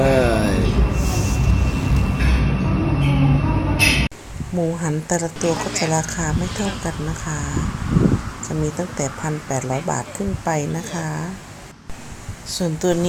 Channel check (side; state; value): both; identical; correlation 1.00